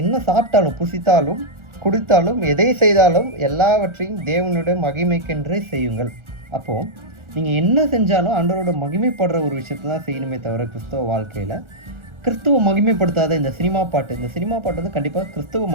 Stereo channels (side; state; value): left; late; 1.4 ms